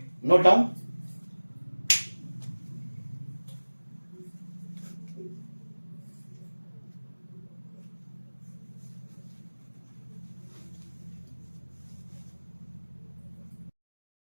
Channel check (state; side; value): inverted; both; correlation -1.00